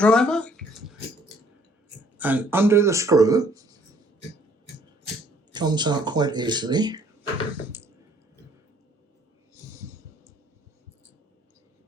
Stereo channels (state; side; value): normal; both; correlation 0.61